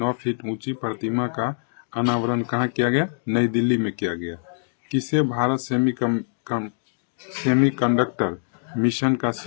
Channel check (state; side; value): silent; right; digital silence